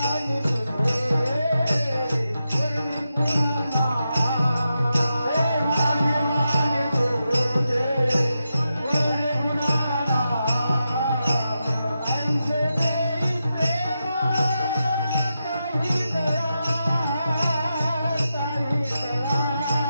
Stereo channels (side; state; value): both; inverted; correlation -0.88